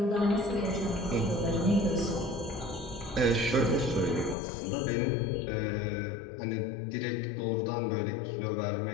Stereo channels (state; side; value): drops out; right; at 4.4 s